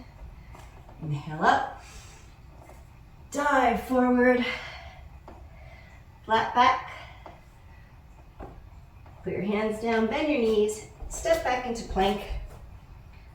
Inhale up. Dive forward. Flat back. Put your hands down, bend your knees, step back into plank.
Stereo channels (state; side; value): identical; both; correlation 1.00